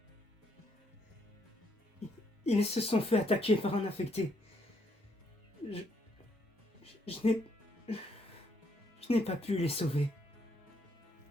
Ils se sont fait attaquer par un infecté. Je n'ai pas pu les sauver.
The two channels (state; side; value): normal; both; correlation 0.72